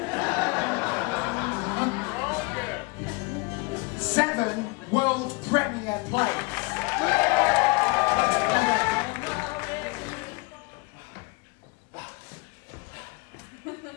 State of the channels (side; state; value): right; quieter; 26.5 dB